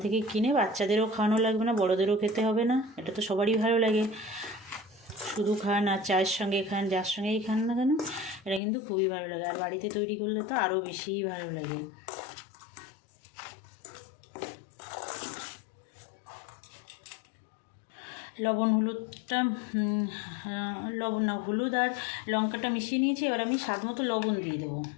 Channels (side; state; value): right; drops out; at 8.6 s